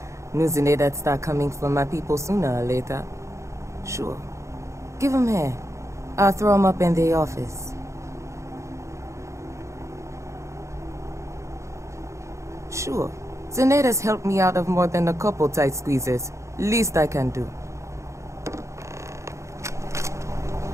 News in there that start coming from my people sooner or later. Sure. Give 'em here. I'll throw 'em up in the office. Sure. Zeneda's helped me out of more than a couple tight squeezes. Least I can do.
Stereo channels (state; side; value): late; left; 0.14 ms